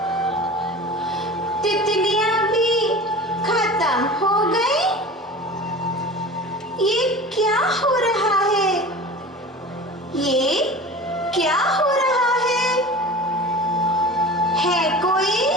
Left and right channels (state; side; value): normal; both; correlation 0.36